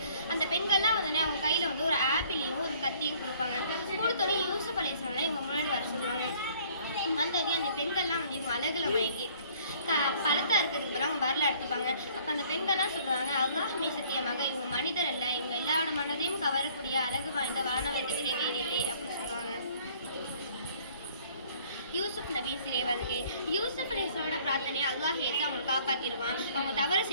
அந்த பெண்கள்லாம் அவங்க கையில் ஒரு ஆப்பிளையும் ஒரு கத்தியும் கொடுப்பாங்க. கொடுத்தோன்னே யூசுப் அலைஹிஸ்ஸலாம் இவங்க முன்னாடி வர சொல்லுவாங்க. வந்தோடனே அந்த பெண்கள்லாம் இவங்க அழகில் மயங்கி பழத்தா இருக்கிறதுக்கு பிறகு அவங்க வரல எடுத்துப்பாங்க. அப்போ அந்த பெண்கள்லாம் சொல்லுவாங்க, அல்லாஹ் மீது சத்தியமாக இவங்க மனிதர் அல்ல, இவங்க எல்லாரோட மனதையும் கவரக்கூடிய அழகு வாய்ந்த வானவத்தை விட வேறில்லை அப்படின்னு சொல்லுவாங்க. யூசுப் நபி சிறை வருகை. யூசுப் அலைஹிஸ்ஸலாமோட பிரார்த்தனையை அல்லாஹ் ஏற்று அவங்களை காப்பாற்றிடுவான். அவங்க தவறு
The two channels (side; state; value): both; inverted; correlation -0.58